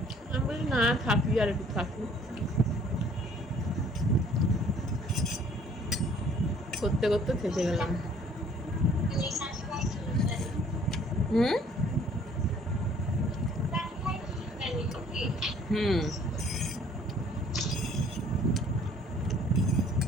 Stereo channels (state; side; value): normal; both; correlation 0.57